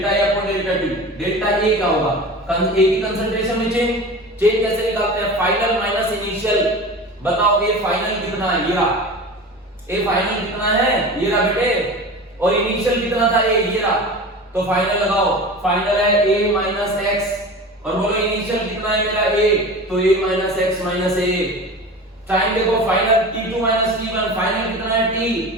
A upon delta T, delta A क्या होगा, ए की कंसंट्रेशन में चेंज कैसे निकालते हैं, फाइनल माइनस इनिशियल। बताओ ये फाइनल कितना है, ये रहा, ए फाइनल कितना है, ये रहा बेटे, और इनिशियल कितना था, ए ये रहा। तो फाइनल लगाओ, फाइनल है a माइनस एक्स, और बोलो इनिशियल कितना है मेरा a, तो a minus x minus a। Time देखो, final t2 minus t1, final कितना है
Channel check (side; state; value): both; normal; correlation 0.33